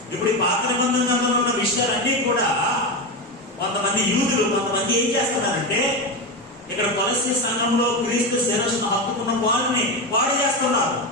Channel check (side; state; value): both; normal; correlation 0.16